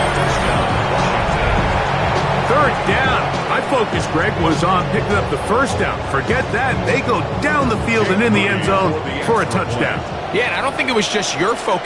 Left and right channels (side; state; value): both; identical; correlation 1.00